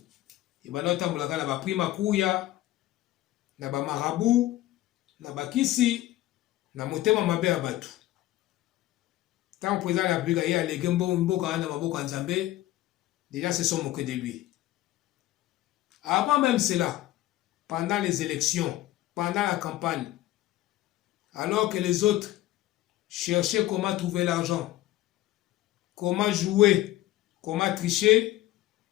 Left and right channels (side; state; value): right; quieter; 15.5 dB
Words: il va notamment la prima kuya, na ba marabu, na ba kisi, na motema mabe ya batu. Tant que président de la République a légué mboka na maboko nzambe, déjà se sont moqués de lui. Avant même cela, pendant les élections, pendant la campagne, alors que les autres cherchaient comment trouver l'argent, comment jouer, comment tricher,